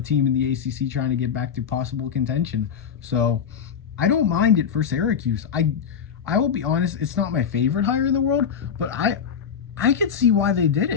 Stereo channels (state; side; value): quieter; right; 7.3 dB